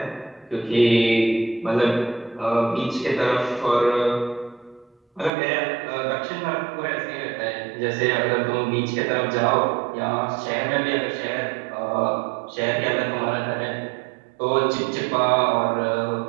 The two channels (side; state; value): left; drops out; at 5.3 s